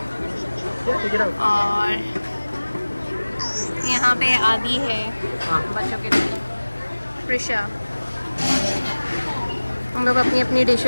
और यहाँ पे आदि है बच्चों के लिए. प्रिशा. हम लोग अपनी अपनी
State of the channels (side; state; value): both; inverted; correlation -1.00